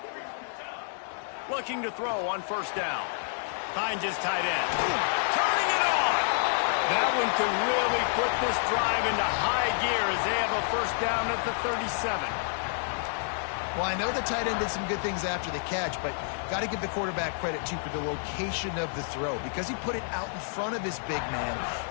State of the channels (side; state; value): right; silent; 59 dB below the other